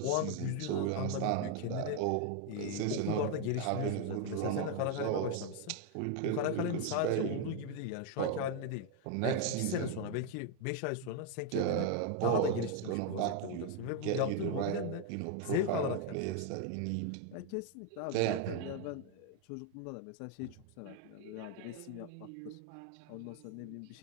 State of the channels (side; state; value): both; different; correlation 0.01